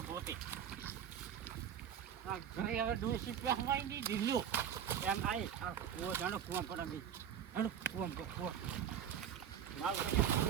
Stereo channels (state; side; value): quieter; left; 8.9 dB